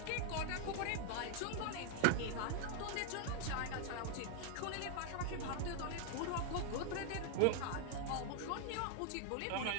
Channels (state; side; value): different; both; correlation 0.00